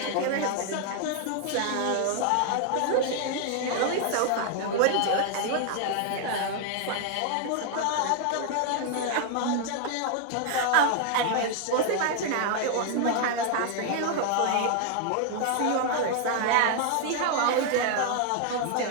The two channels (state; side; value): different; both; correlation 0.00